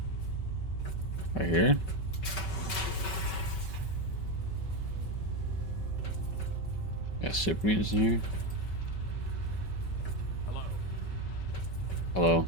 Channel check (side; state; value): right; late; 5.3 ms